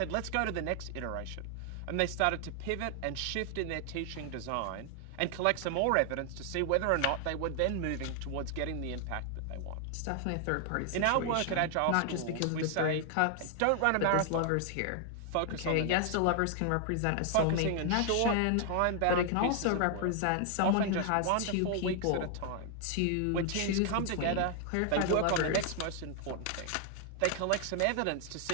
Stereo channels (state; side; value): different; both; correlation 0.00